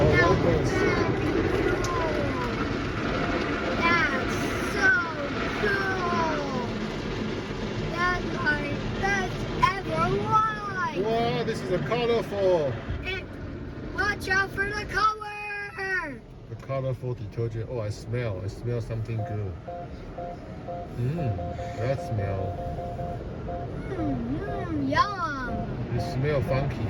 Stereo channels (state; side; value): identical; both; correlation 1.00